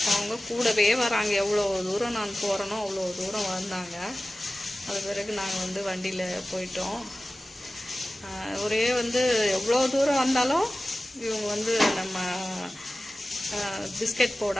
அவங்க கூடவே வராங்க. எவ்வளோ தூரம் நான் போகிறேனோ அவ்வளோ தூரம் வந்தாங்க. அது பிறகு நாங்கள் வந்து வண்டியில் போயிட்டோம். ஒரே வந்து எவ்வளோ தூரம் வந்தாலும் இவங்க வந்து நம்ம பிஸ்கெட்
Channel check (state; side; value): normal; both; correlation 0.96